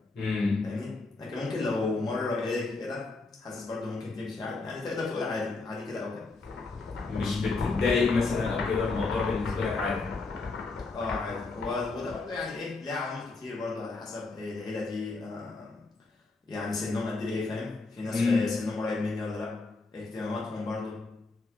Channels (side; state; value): right; quieter; 3.6 dB